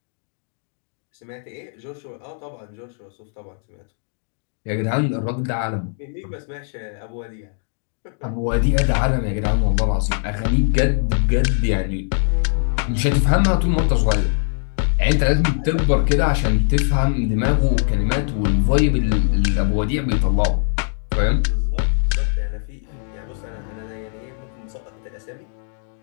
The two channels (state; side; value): silent; right; digital silence